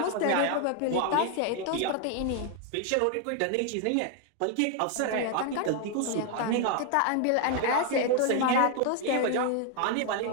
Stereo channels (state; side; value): different; both; correlation 0.01